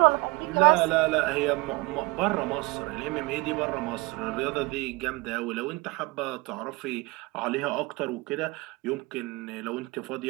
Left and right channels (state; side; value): quieter; left; 24.7 dB